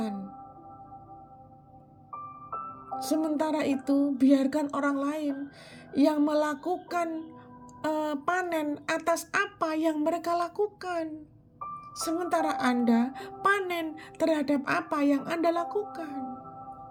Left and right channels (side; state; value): both; identical; correlation 1.00